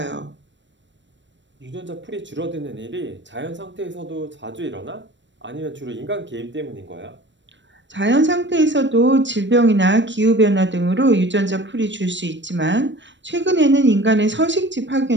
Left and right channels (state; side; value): late; left; 0.53 ms